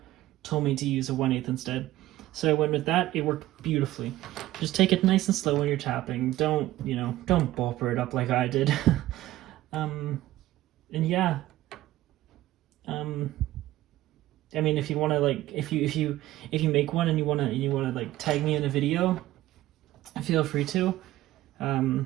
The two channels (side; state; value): left; quieter; 15.6 dB